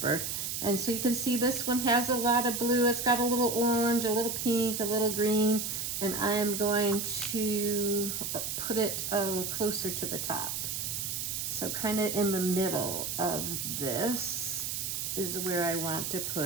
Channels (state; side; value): noise; right; hiss, 3 dB below the sound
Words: And so you can see this one has a lot of blue. It's got a little orange, a little pink, a little green, and I am going to put it closer to the top. So kind of in the middle of this is where I want to